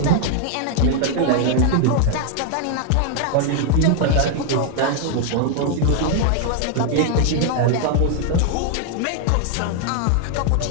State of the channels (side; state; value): both; different; correlation 0.00